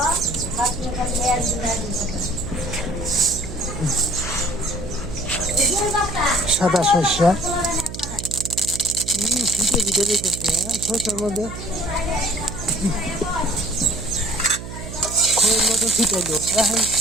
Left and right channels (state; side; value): noise; right; hum, 10 dB below the sound